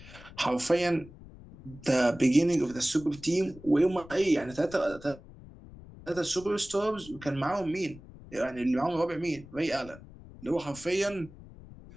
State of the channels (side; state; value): left; noise; rumble, 18 dB below the sound